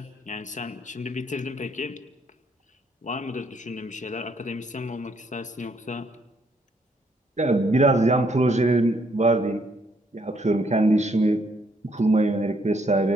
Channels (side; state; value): both; normal; correlation 0.70